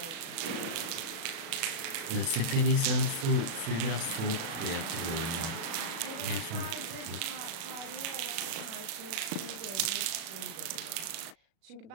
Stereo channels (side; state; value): left; late; 37 ms